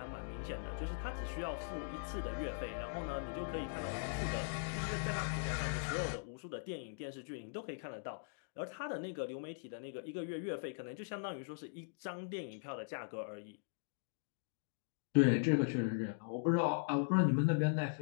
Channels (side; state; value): right; silent; digital silence